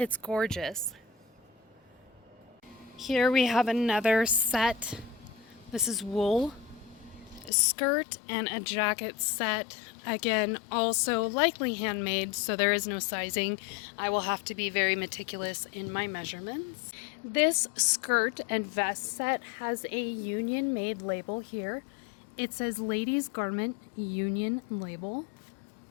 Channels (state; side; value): drops out; right; at 7.5 s